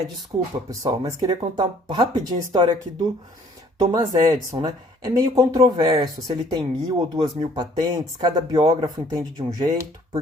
Desculpa, pessoal, mas queria contar rapidinho a história aqui do Thomas Edison, né? É meio controverso se ele tem 1.000 ou 2.000 patentes, cada biógrafo entende de um jeito,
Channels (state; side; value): normal; both; correlation 0.58